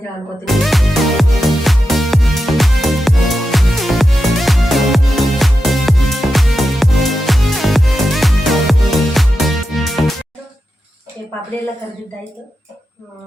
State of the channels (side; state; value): both; normal; correlation 0.89